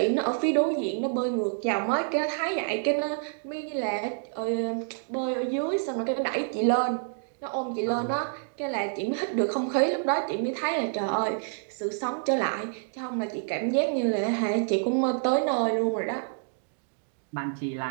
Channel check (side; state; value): left; silent; digital silence